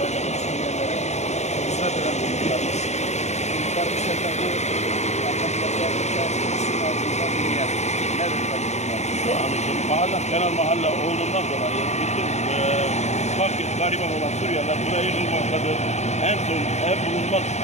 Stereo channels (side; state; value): right; late; 0.33 ms